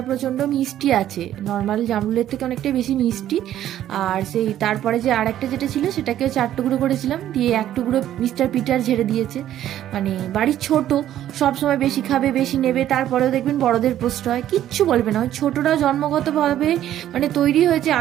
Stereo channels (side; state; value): left; quieter; 12.0 dB